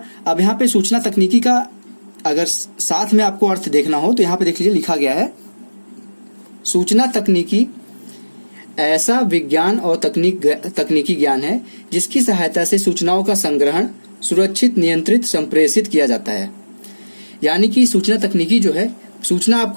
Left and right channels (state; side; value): inverted; both; correlation -1.00